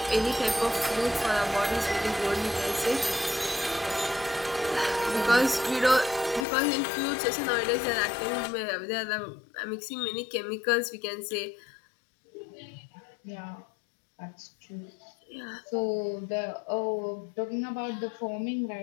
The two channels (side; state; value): right; drops out; at 6.5 s